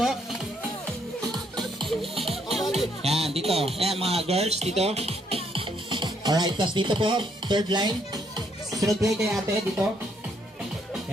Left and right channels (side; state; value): both; normal; correlation 0.71